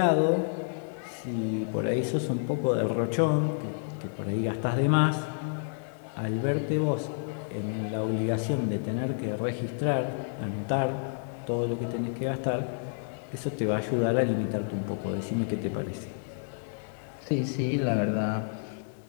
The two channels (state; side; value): silent; right; digital silence